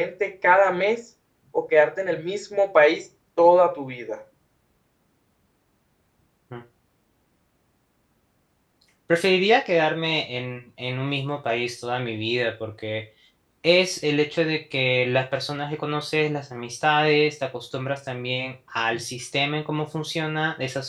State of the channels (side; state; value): both; identical; correlation 1.00